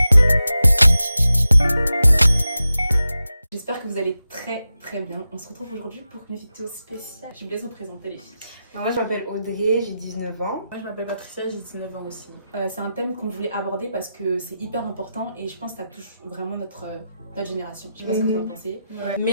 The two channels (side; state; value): both; inverted; correlation -0.91